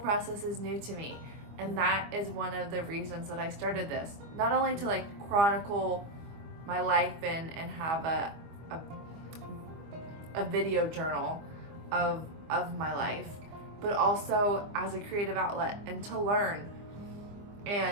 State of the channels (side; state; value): left; late; 25 ms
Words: is new to me. And that is one of the reasons that I started this. Not only to like chronicle my life and have a video journal of my life, but also as a creative outlet and to learn